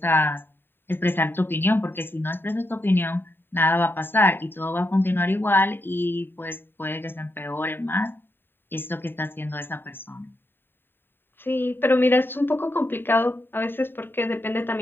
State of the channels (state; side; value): late; right; 0.099 ms